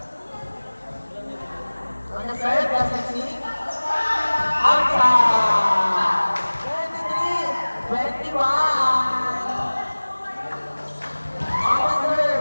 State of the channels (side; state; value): both; inverted; correlation -1.00